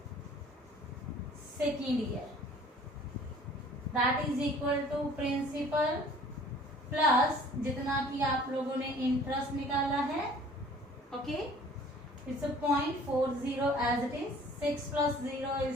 second year, that is equal to principal plus जितना कि आप लोगों ने इंटरेस्ट निकाला है। Okay, it's 0.40 as it is. 6 plus 0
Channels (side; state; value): both; normal; correlation 0.51